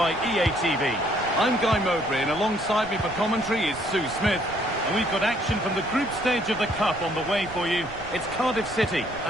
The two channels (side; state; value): right; noise; rumble, 17 dB below the sound